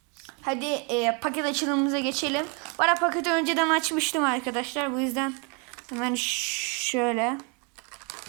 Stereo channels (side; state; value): left; quieter; 34.7 dB